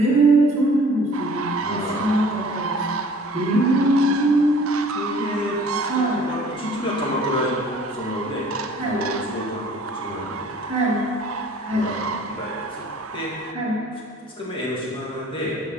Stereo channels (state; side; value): normal; both; correlation 0.51